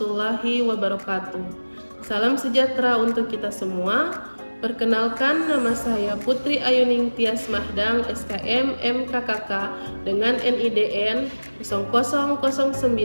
wabarakatuh. Salam sejahtera untuk kita semua. Perkenalkan, nama saya Putri Ayuning Tias Mahdang, SKM MKKK dengan NIDN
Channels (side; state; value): both; inverted; correlation -1.00